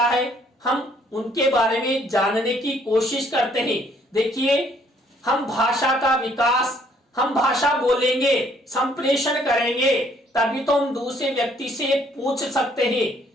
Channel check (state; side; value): normal; both; correlation 0.64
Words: है, हम उनके बारे में जानने की कोशिश करते हैं। देखिए हम भाषा का विकास, हम भाषा बोलेंगे, संप्रेषण करेंगे, तभी तो हम दूसरे व्यक्ति से पूछ सकते हैं